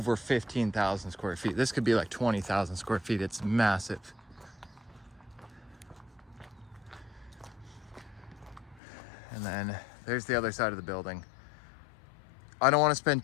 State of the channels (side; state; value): right; drops out; at 8.8 s